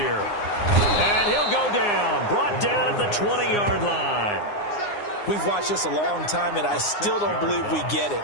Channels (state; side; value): late; right; 9.7 ms